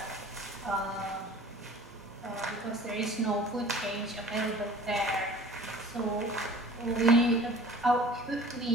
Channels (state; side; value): normal; both; correlation 0.45